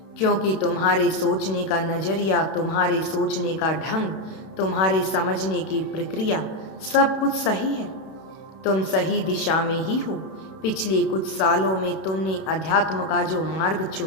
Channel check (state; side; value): late; right; 31 ms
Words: क्योंकि तुम्हारे सोचने का नजरिया, तुम्हारे सोचने का ढंग, तुम्हारे समझने की प्रक्रिया सब कुछ सही है। तुम सही दिशा में ही हो। पिछले कुछ सालों में तुमने अध्यात्म का जो मार्ग